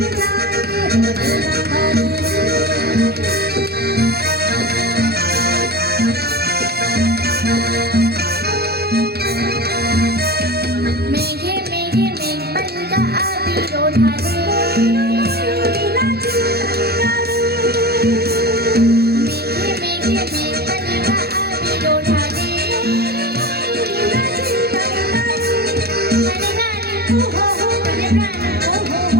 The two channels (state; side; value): late; left; 0.46 ms